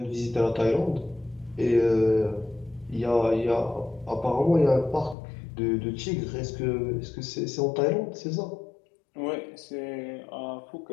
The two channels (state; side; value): drops out; right; at 5.2 s